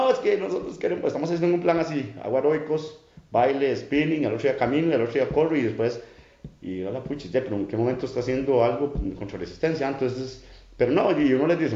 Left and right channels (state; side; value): identical; both; correlation 1.00